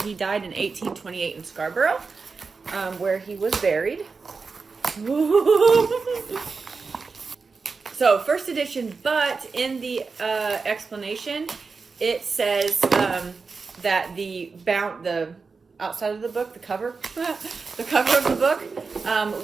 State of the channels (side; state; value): left; quieter; 4.6 dB